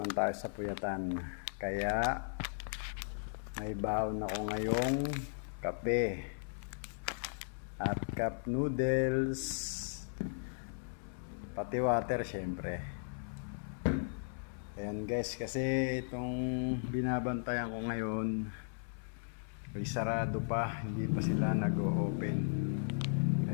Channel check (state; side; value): silent; right; 53 dB below the other